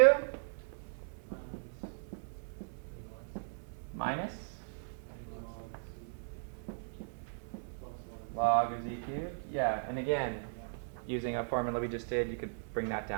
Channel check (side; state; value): left; silent; 53 dB below the other